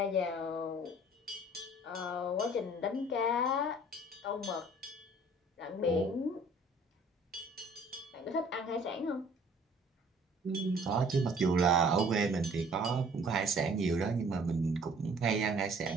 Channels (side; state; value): both; normal; correlation 0.54